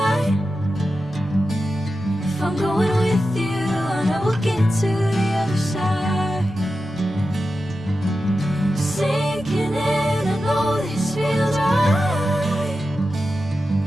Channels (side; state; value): both; normal; correlation 0.91